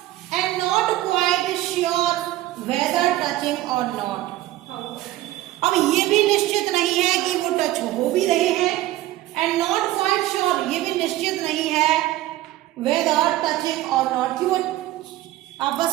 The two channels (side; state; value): left; quieter; 15.6 dB